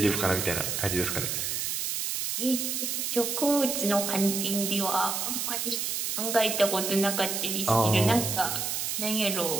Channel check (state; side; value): noise; right; hiss, 1 dB below the sound